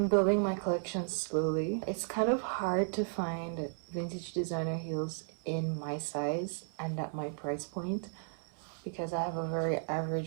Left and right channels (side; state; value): left; silent; 55 dB below the other